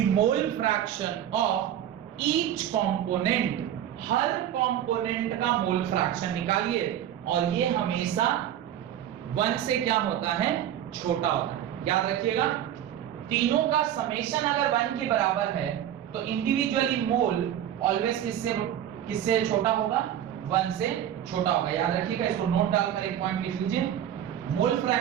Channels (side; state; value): left; quieter; 10.8 dB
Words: mole fraction of each component, her component का मोल फ्रैक्शन निकालिए, और ये हमेशा 1 से क्या होता है, छोटा होता है। याद रखिएगा, तीनों का समेशन अगर 1 के बराबर है तो इंडिविजुअली मोल ऑलवेज किससे छोटा होगा, 1 से छोटा होगा। याद रखिएगा, इसको नोट डालकर एक पॉइंट लिख लीजिए, मोल